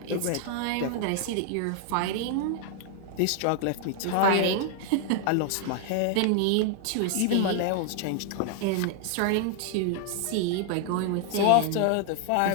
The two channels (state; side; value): different; both; correlation 0.00